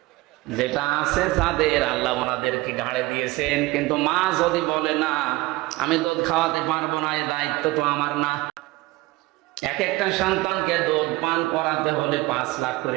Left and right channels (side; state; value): left; quieter; 20.5 dB